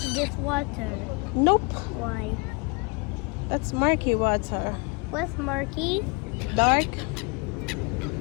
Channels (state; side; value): quieter; right; 30.7 dB